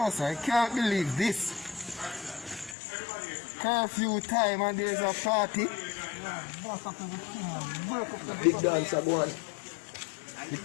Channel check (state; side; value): drops out; right; at 2.8 s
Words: sir, I can't believe this. Curfew time and there's a party. Big dancer go on. You